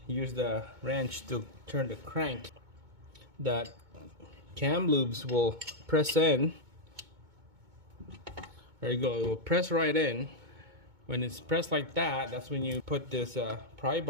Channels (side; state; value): left; late; 2.2 ms